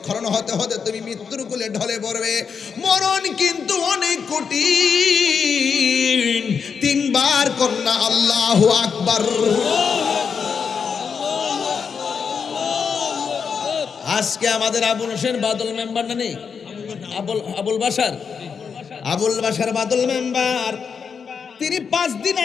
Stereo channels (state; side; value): quieter; right; 6.2 dB